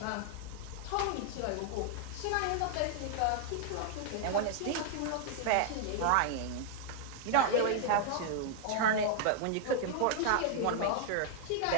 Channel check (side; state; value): both; different; correlation -0.01